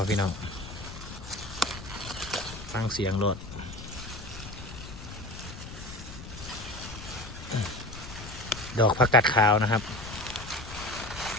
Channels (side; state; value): left; noise; rumble, 12 dB below the sound